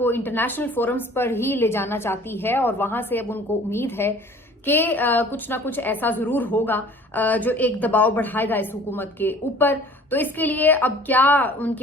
इंटरनेशनल फोरम्स पर ही ले जाना चाहती है और वहां से अब उनको उम्मीद है कि कुछ ना कुछ ऐसा जरूर होगा जो एक दबाव बढ़ाएगा इस हुकूमत के ऊपर। तो इसके लिए अब क्या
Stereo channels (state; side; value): normal; both; correlation 0.49